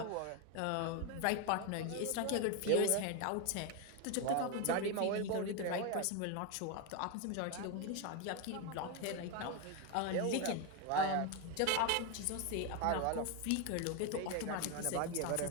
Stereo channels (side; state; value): both; different; correlation 0.02